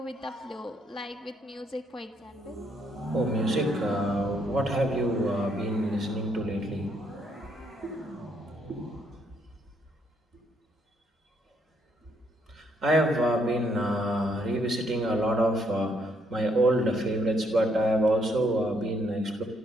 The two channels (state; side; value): normal; both; correlation 0.72